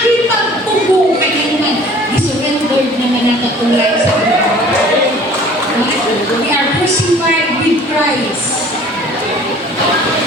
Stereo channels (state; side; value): normal; both; correlation 0.49